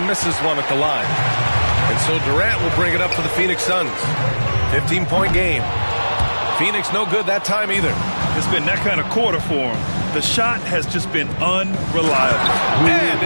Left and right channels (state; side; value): inverted; both; correlation -1.00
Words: misses one at the line. And so Durant will bring it up for the Phoenix Suns. 15-point game. Phoenix no good that time either. It's been that kind of quarter for him. The shot has just been unreliable. And